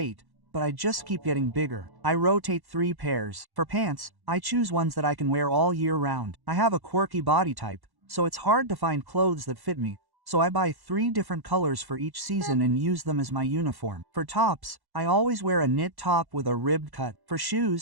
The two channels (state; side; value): late; left; 1.1 ms